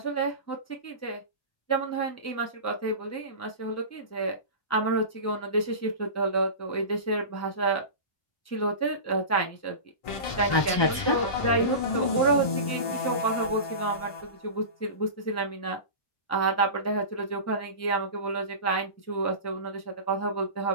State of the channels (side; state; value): right; late; 1.2 ms